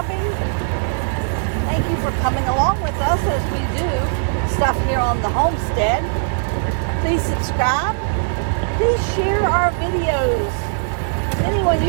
Thank you for coming along with us as we do stuff here on the homestead. Please subscribe. Please share our videos with anyone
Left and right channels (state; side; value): silent; left; digital silence